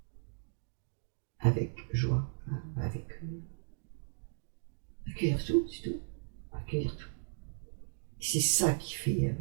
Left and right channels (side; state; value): left; silent; digital silence